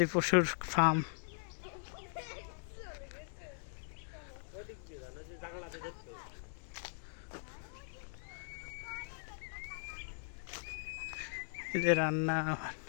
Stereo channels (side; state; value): right; silent; digital silence